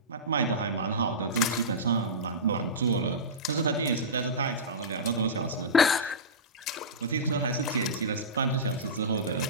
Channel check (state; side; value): normal; both; correlation -0.16